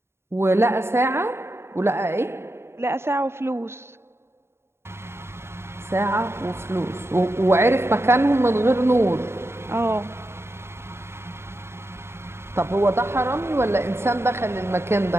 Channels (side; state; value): left; late; 0.12 ms